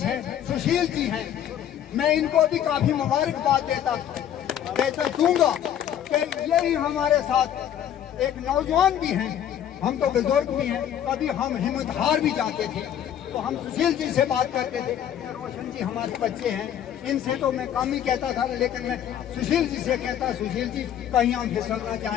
हैं, सुशील जी हैं, मैं इनको भी काफी मुबारकबाद देता दूंगा कि यही हमारे साथ एक नौजवान भी हैं, हम तो बुजुर्ग भी हैं, कभी हम हिम्मत हार भी जाते थे। तो हम सुशील जी से बात करते थे। रोशन जी हमारे बच्चे हैं, इनसे तो मैं कम ही कहता था, लेकिन मैं सुशील जी से कहता, सुशील जी कहीं हम फिसलना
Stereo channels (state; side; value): quieter; right; 10.2 dB